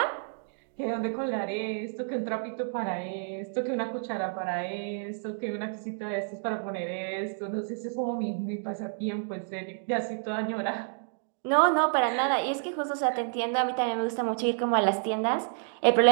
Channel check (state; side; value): silent; left; digital silence